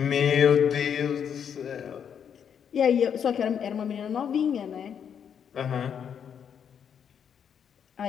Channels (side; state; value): right; quieter; 7.9 dB